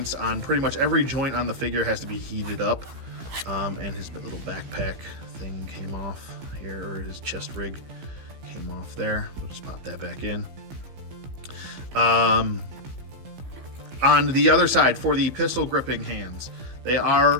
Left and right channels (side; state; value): left; late; 15 ms